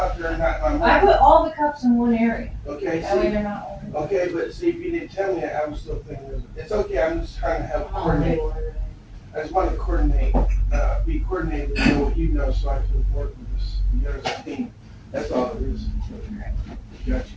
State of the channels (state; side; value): identical; both; correlation 1.00